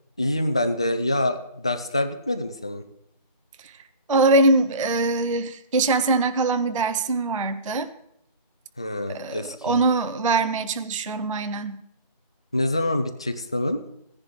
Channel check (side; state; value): both; inverted; correlation -0.40